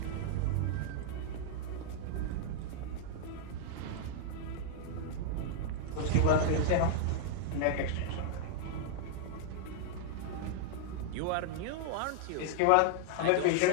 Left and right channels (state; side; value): different; both; correlation -0.01